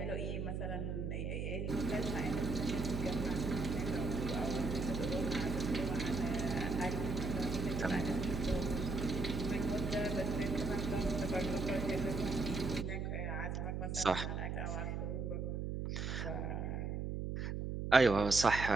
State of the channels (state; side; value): noise; right; hum, 2 dB below the sound